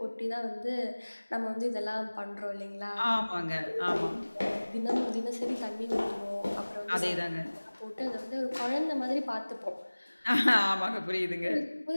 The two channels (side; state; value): both; inverted; correlation -1.00